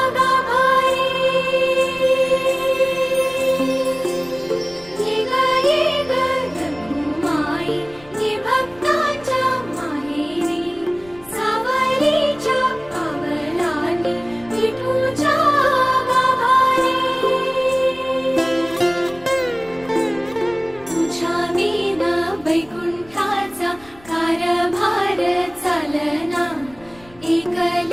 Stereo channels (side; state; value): left; noise; rumble, 25 dB below the sound